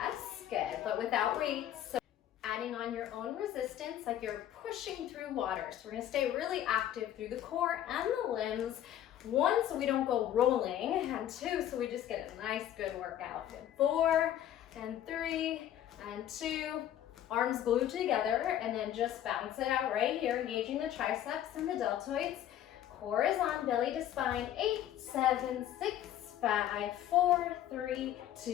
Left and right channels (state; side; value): quieter; right; 11.5 dB